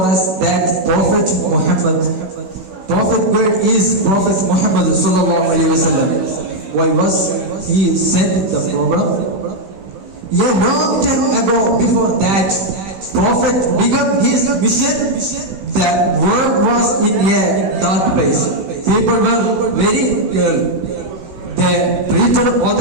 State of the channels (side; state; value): left; late; 16 ms